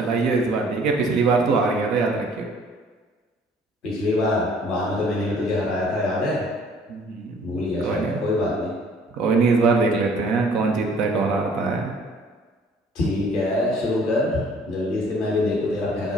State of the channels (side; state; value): both; normal; correlation 0.56